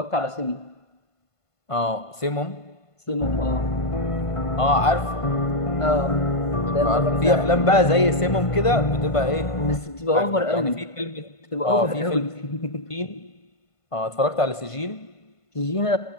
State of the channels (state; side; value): late; right; 1.5 ms